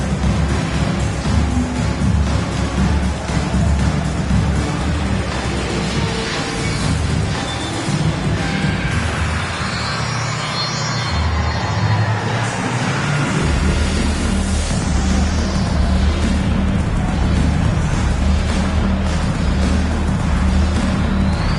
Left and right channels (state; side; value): identical; both; correlation 1.00